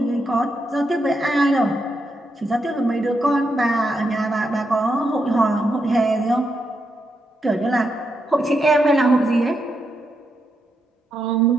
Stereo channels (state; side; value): normal; both; correlation 0.83